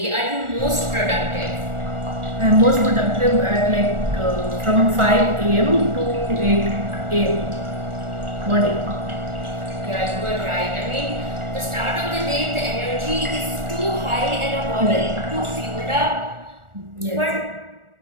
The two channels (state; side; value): late; left; 1.4 ms